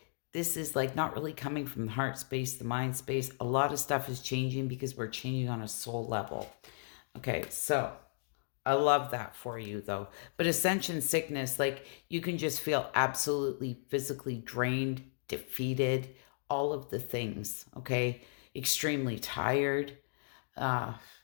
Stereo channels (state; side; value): silent; right; digital silence